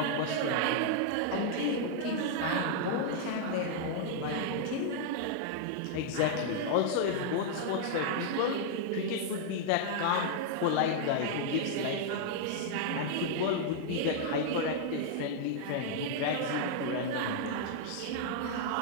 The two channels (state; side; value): different; both; correlation -0.01